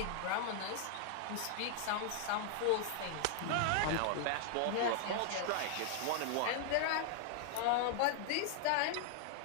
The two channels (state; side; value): different; both; correlation 0.00